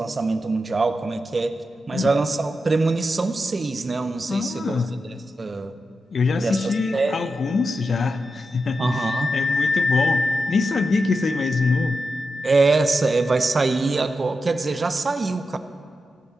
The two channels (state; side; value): normal; both; correlation 0.89